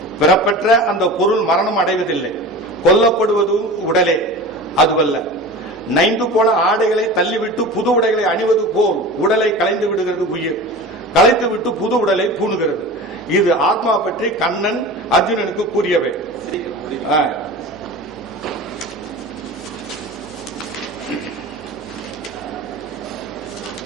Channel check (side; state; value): both; normal; correlation 0.34